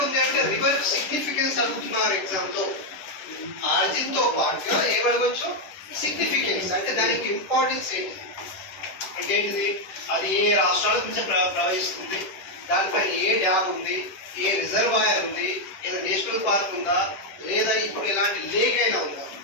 ఉంది అంటే రివర్ సిగ్నిఫికెన్స్ అనుకుంటున్నారు ఎగ్జామ్ లో. ఆర్జిన్ తో పాటుగా ఏమడవచ్చు? సిగ్నిఫికెన్స్ అంటే దానికి ఇంపార్టెన్స్ ఏంటి అంటే ఏంటిది? అది ఏ రాష్ట్రాల నుంచి ప్రవహిస్తుంది, దానిపైన ఏ డ్యామ్ ఉంది, ఏ రిజర్వాయర్ ఉంది, ఏదో నేషనల్ పార్క్ ఉందా, లేదా ఇప్పుడు ఇలాంటి లేక్ అయినా ఉందా?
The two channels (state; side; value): late; right; 10 ms